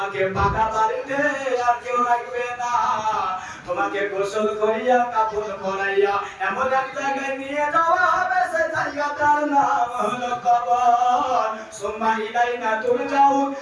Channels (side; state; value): both; identical; correlation 1.00